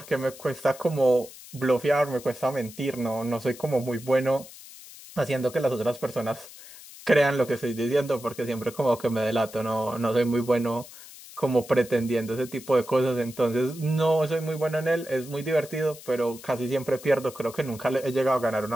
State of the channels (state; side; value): noise; left; hiss, 17 dB below the sound